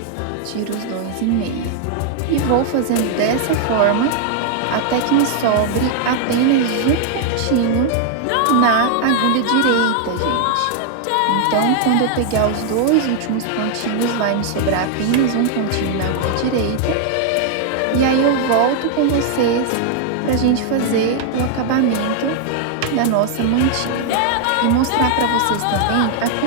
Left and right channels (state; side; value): different; both; correlation 0.00